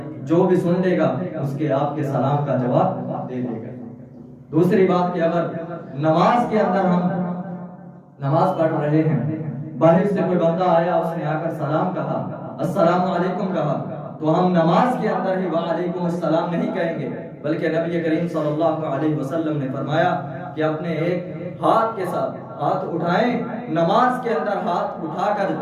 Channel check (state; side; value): identical; both; correlation 1.00